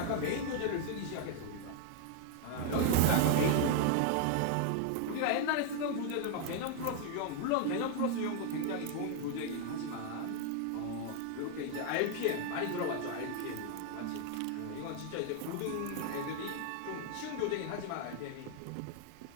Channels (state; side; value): different; both; correlation 0.00